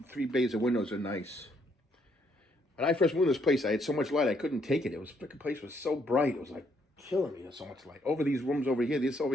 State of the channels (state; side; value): normal; both; correlation 0.71